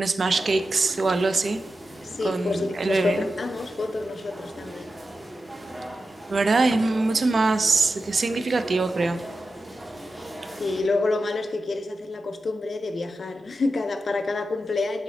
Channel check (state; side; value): normal; both; correlation 0.91